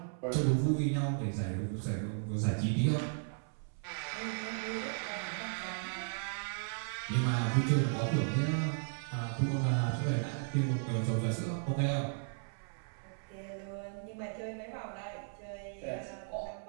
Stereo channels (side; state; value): left; silent; 54 dB below the other